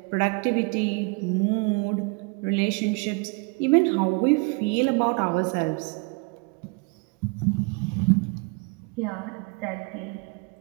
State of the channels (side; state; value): left; quieter; 30.6 dB